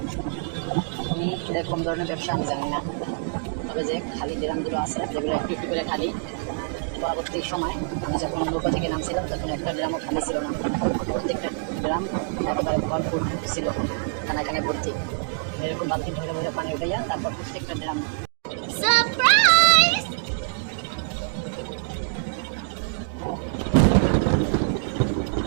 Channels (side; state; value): left; silent; digital silence